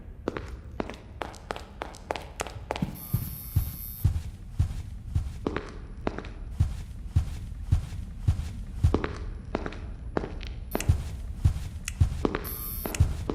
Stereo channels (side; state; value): both; identical; correlation 1.00